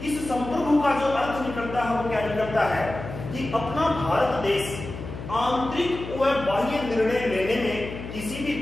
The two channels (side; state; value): left; noise; hum, 10 dB below the sound